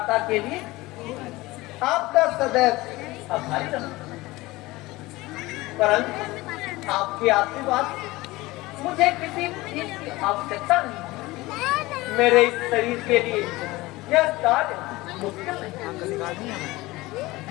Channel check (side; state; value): right; quieter; 20.1 dB